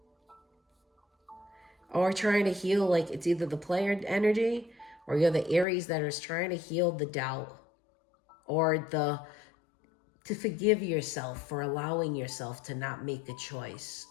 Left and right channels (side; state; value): right; drops out; at 5.7 s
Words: or trying to heal, like it's either the player energy or you're the Aries that is trying to heal the doubt. or to forgive yourself for allowing yourself to not make a choice